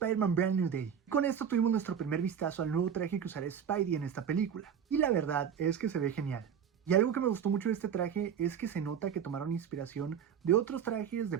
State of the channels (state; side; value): quieter; left; 8.0 dB